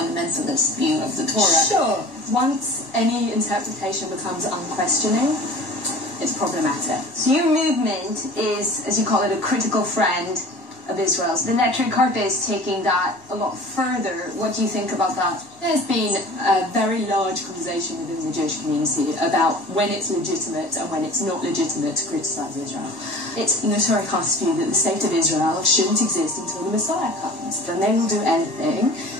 view of the Torah? Sure. Once any interpretation becomes unquestioning, it's problematic. So your movement is, as you call it, a critical friend of Israel's. The Neturei Karta is taking that a lot further. What do you think about that? There's been a very large conversation within the Jewish community about when it's legitimate and when it's not legitimate to criticise Israel. It's Neturei Karta's view that the state of Israel shouldn't exist until the Messiah comes. Then they will do anything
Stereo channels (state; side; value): normal; both; correlation 0.41